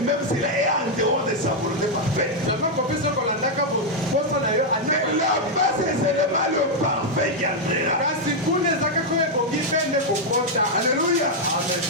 s'il est en dehors de sa volonté parfaite. Mais là-bas, c'est seulement le parfait qui entrera. Alléluia.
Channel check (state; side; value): normal; both; correlation -0.01